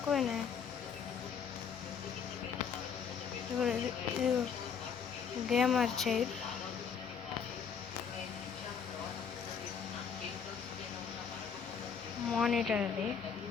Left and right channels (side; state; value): right; quieter; 6.8 dB